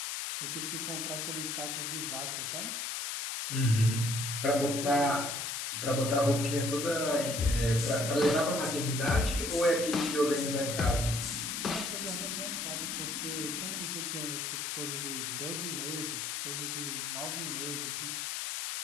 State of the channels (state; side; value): noise; left; hiss, 3 dB below the sound